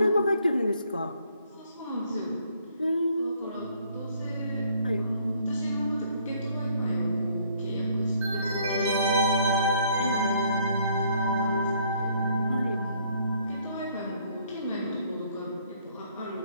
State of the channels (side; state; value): both; inverted; correlation -0.65